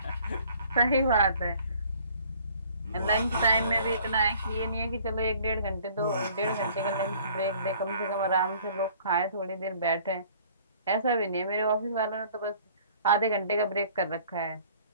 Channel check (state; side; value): inverted; both; correlation -0.54